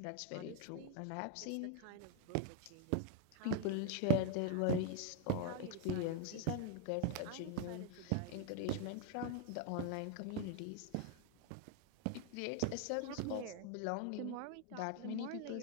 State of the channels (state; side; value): different; both; correlation 0.01